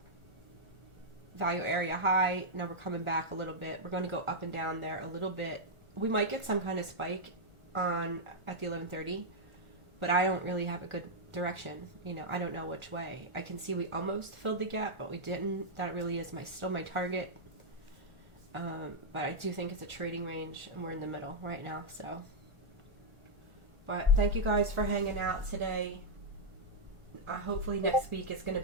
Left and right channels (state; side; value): late; left; 1.4 ms